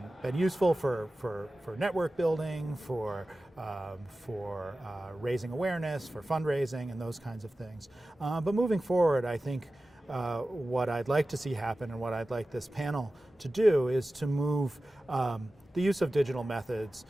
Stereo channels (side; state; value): both; normal; correlation 0.95